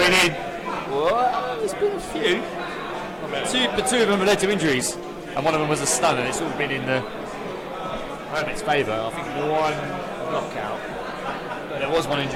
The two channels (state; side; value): identical; both; correlation 1.00